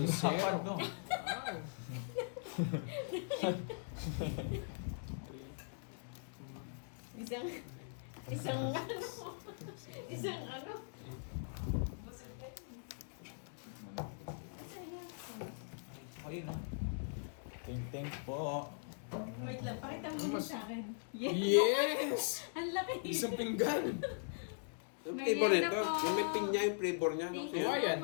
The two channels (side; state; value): right; silent; digital silence